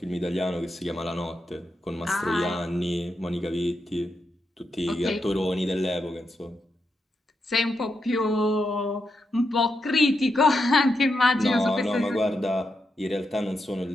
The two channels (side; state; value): both; normal; correlation 0.84